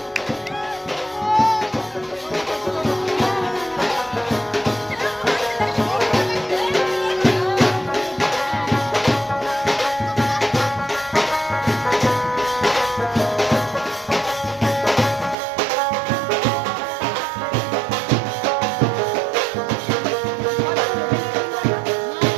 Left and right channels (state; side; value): drops out; left; at 15.4 s